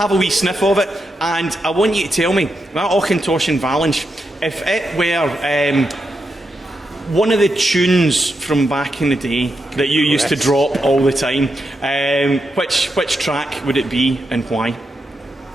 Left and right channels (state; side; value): normal; both; correlation 0.85